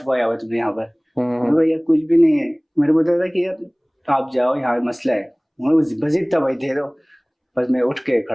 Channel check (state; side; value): identical; both; correlation 1.00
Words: हुआ तुमने यहाँ पर। मैंने कहा यार कुछ भी नहीं है, मेरे को बताया था कि यार आप जाओ यहाँ मसला है, उन्होंने बस इतना भाई दे दो, बस मैं उठ के